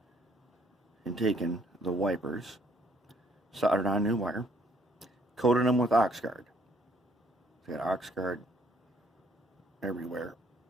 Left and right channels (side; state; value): both; normal; correlation 0.65